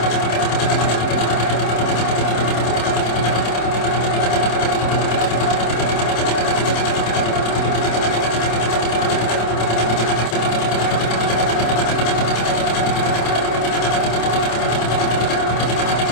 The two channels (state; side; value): late; right; 27 ms